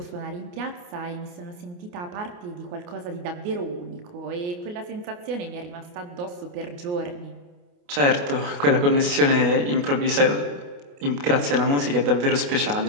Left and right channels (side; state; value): left; late; 28 ms